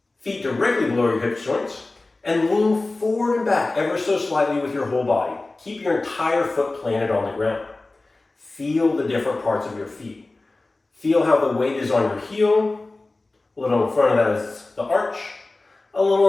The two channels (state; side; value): quieter; right; 3.2 dB